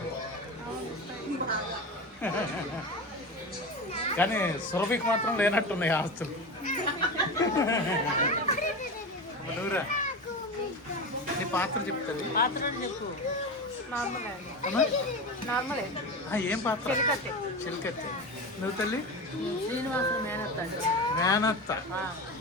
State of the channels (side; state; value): both; normal; correlation 0.24